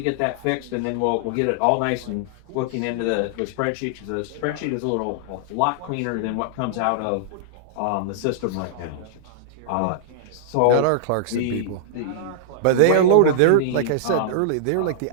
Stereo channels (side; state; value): both; different; correlation -0.01